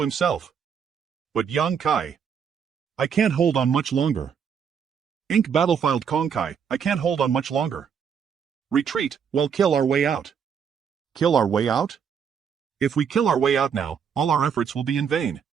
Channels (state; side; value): quieter; left; 7.2 dB